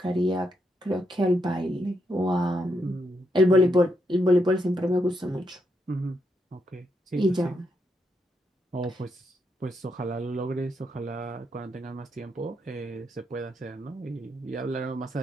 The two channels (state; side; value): normal; both; correlation 0.80